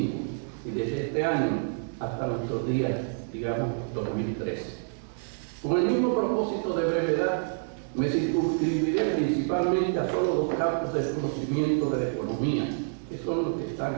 y desde este año hasta nuestros días, digamos 2013. Con el mismo propósito de brevedad, me circunscribiré principalmente a solo 2 campos de conocimiento de la economía, que son los que están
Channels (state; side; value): silent; left; digital silence